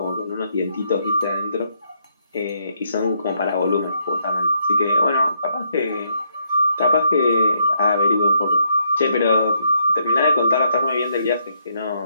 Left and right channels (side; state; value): both; inverted; correlation -0.74